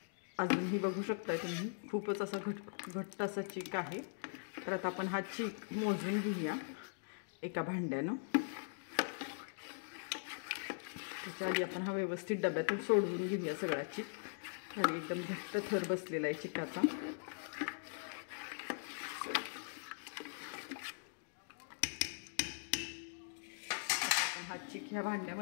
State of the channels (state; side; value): silent; right; digital silence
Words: अजूनही बघू शकताय तुम्ही खूपच असा घट्ट असा चीक आहे. तर आता आपण हा चीक मोजून घेऊया एका भांड्यानं. त्याच्या आधी आपण हा व्यवस्थित डब्यातून सोडवून घेऊया सगळा चीक. खाली एकदम घट्ट थर बसलेला आहे चिकाचा. हा चीक ह्या